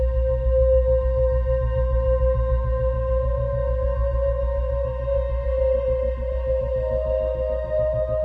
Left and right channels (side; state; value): both; identical; correlation 1.00